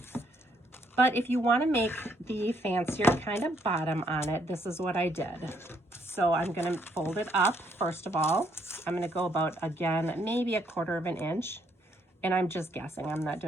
But if you want to make the fancier kind of bottom on it, this is what I did. So I'm going to fold it up, first of all. I'm going to go about, again, maybe 1/4 of an inch. And I'm just guessing. I'm not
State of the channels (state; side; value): normal; both; correlation 0.71